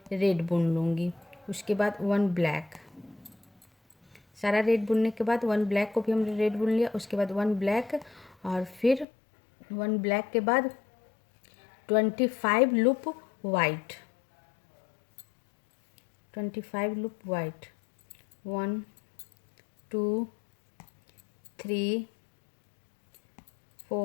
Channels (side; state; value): right; drops out; at 9.1 s